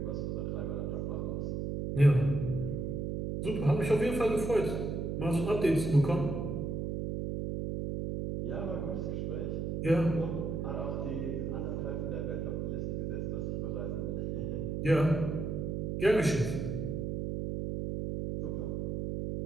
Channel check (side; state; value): right; noise; hum, 2 dB below the sound